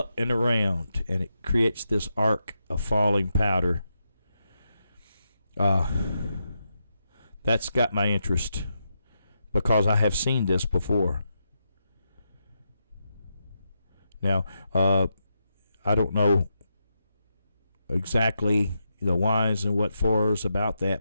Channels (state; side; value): inverted; both; correlation -0.84